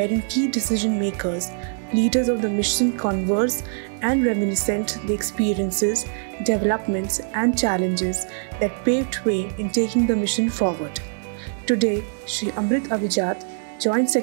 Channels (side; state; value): left; silent; digital silence